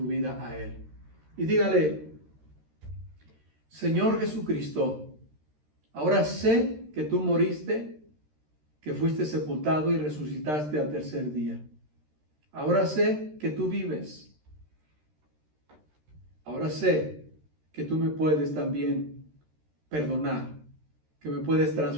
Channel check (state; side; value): late; left; 13 ms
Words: vida a Él. Y dígale, Señor Jesucristo, ahora sé que tú moriste, que fuiste sepultado y resucitaste al tercer día. Ahora sé que tú vives. Ahora sé que tú me puedes también perdonar, que me puedes